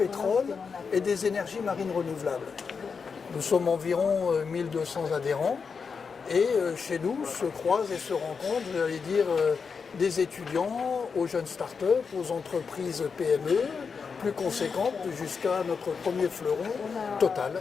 et des énergies marines renouvelables. Nous sommes environ 1200 adhérents et chez nous se croisent et se rencontrent, j'allais dire, des étudiants aux jeunes start-up, aux entreprises PME, plus conséquentes, jusqu'à notre premier fleuron, Total,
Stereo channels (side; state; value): right; quieter; 5.6 dB